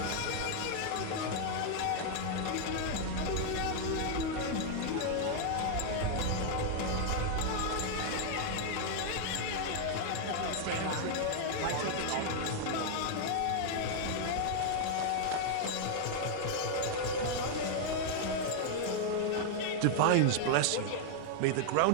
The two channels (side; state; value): both; different; correlation 0.00